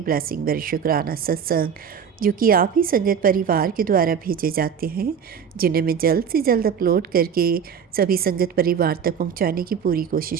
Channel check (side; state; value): left; quieter; 7.3 dB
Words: ब्लेसिंग भरे शुक्राना सत्संग, जो कि आप ही संगत परिवार के द्वारा भेजे जाते हैं, जिन्हें मैं जल्द से जल्द अपलोड करके सभी संगत परिवार तक पहुँचाने की पूरी